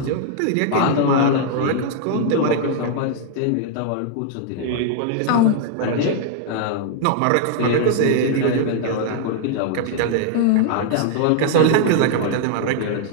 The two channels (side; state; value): both; different; correlation 0.00